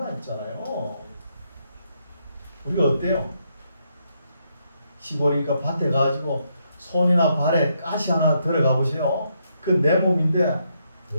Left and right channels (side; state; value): both; inverted; correlation -0.77